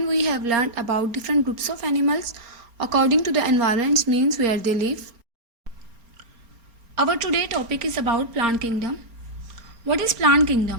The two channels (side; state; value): left; late; 4.3 ms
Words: we have learned about different groups of animals according to the environments means where they live. Our today topic is about plant kingdom. What is plant